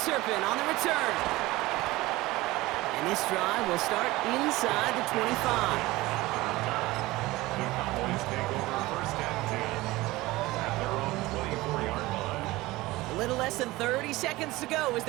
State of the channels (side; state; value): left; quieter; 19.5 dB